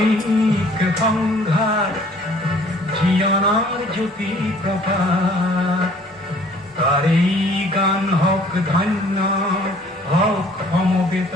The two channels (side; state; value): both; normal; correlation 0.56